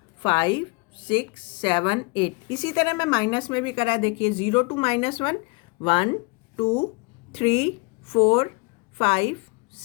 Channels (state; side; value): quieter; right; 29.0 dB